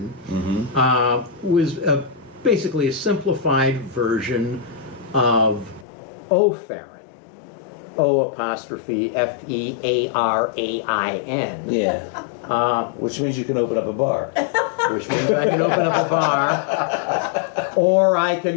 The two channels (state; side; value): drops out; right; at 5.9 s